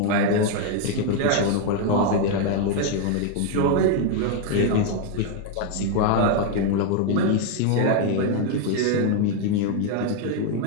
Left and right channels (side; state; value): both; different; correlation 0.00